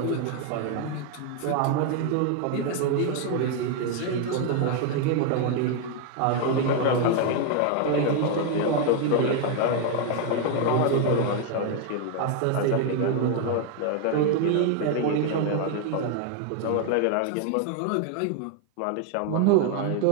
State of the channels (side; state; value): both; different; correlation 0.01